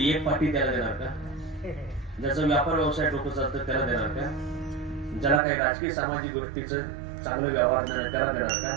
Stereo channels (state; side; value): drops out; left; at 5.4 s